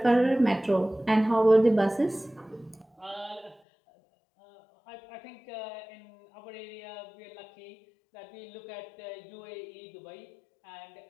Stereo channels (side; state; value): right; drops out; at 3.6 s